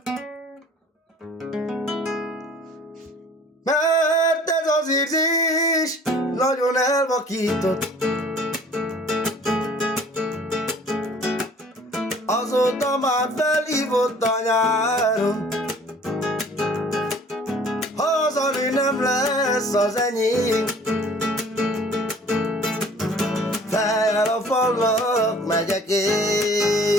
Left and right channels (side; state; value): both; normal; correlation 0.51